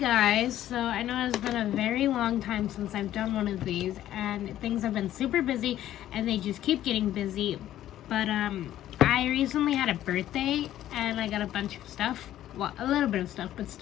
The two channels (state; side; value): quieter; right; 12.7 dB